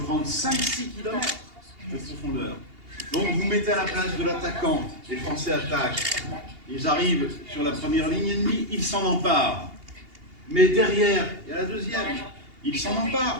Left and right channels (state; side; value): late; left; 2.8 ms